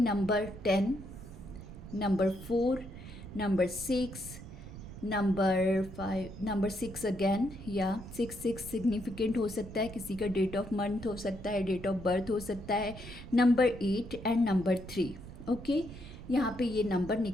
10, number 4, number 6, number 5, number 6 again, या 6 सिग्निफिकेंट हो सकता है, किसी का डेट ऑफ मंथ हो सकता है, डेट ऑफ बर्थ हो सकता है, नंबर 8 एंड नंबर 3। ओके, यहाँ पे ये नंबर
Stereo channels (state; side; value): noise; right; rumble, 13 dB below the sound